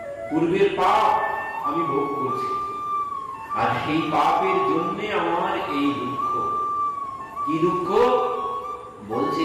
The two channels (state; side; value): identical; both; correlation 1.00